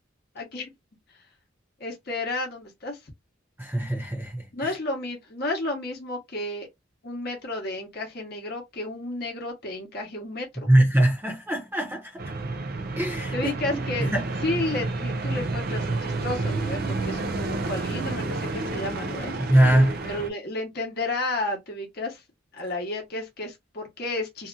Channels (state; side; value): normal; both; correlation 0.70